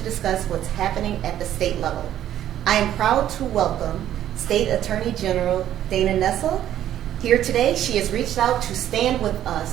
discuss what's happening at the state level. I am proud to welcome State Attorney General Dana Nessel. Here today, she has reached out to stand with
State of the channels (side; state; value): left; quieter; 11.7 dB